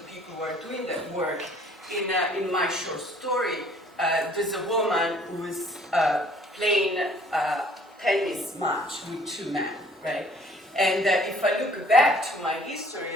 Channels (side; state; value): both; normal; correlation 0.57